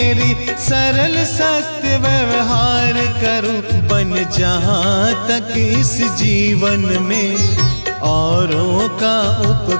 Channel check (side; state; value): both; inverted; correlation -1.00